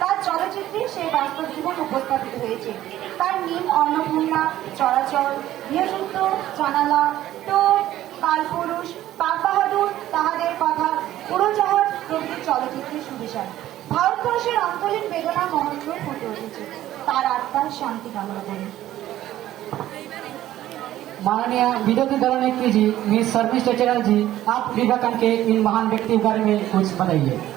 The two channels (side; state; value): left; quieter; 13.6 dB